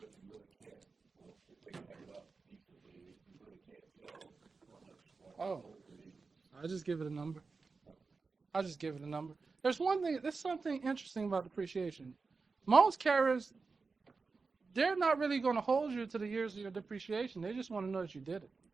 you really can't. If they cut it up equally, you really can't tell. Oh, I'll just give it a number. There's something interesting about depreciation. Most carriers, they're not really going to hold you to the years of your depreciation. They just want to know that you did it.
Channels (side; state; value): left; quieter; 4.4 dB